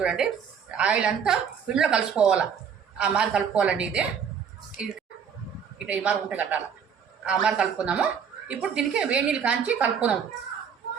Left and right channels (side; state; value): left; quieter; 7.2 dB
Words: ఆయిల్ అంతా పిండిలో కలిసిపోవాలి, ఆ మరి కలుపుకోవాలండి. ఇది ఇట్లా ఈ మరి ఉంటే కట్టాలి, ఆ మరి కలుపుకుందాము. ఇప్పుడు దీనికి వేడి నీళ్ళు కాంచి కలుపుకుందాము.